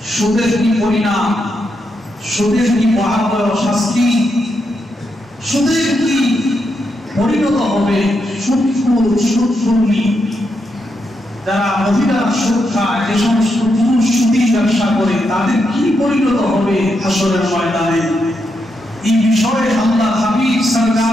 সুদের কি পরিণাম, সুদের কি ভয়াবহ শাস্তি, সুদের কি পরিণত হবে, সুদখোর যারা মহিলা সুদ খায়, যে সমস্ত পুরুষ সুদী ব্যবসা করে, তাদের কি পরিণত হবে হাসরের ময়দানে। এই বিষয়ে আল্লাহ হাবিব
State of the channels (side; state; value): both; normal; correlation 0.83